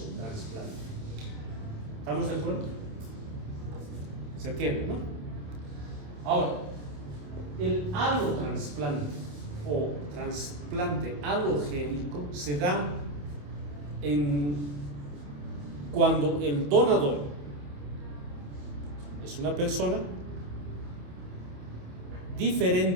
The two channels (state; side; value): late; left; 28 ms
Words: ¿Estamos de acuerdo? ¿Se entiende, no? Ahora, el allotrasplante o trasplante halogénico se da cuando el donador es una persona